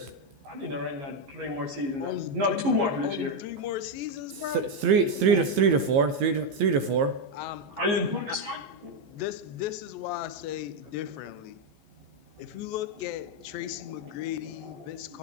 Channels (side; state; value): left; late; 15 ms